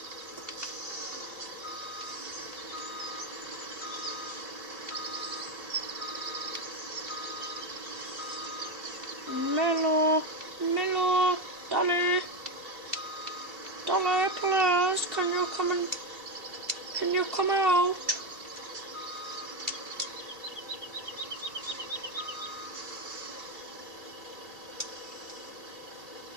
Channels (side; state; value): left; late; 2.7 ms